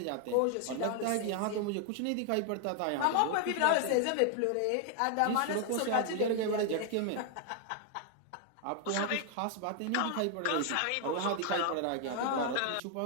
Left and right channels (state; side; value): different; both; correlation 0.00